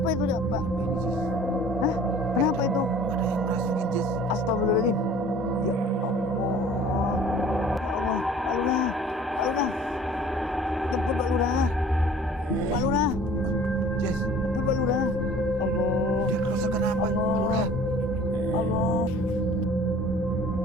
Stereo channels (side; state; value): both; normal; correlation 0.49